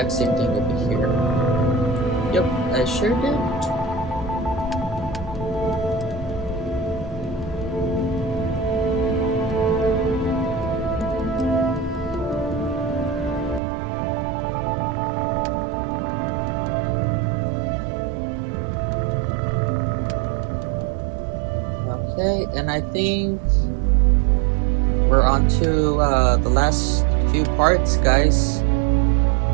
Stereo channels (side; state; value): left; drops out; at 13.6 s